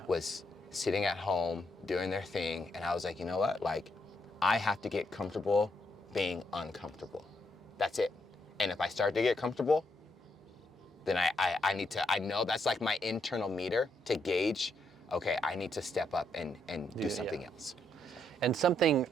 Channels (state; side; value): normal; both; correlation 0.77